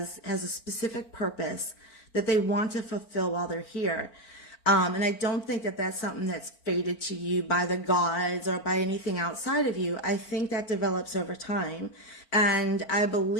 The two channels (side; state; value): right; late; 4.4 ms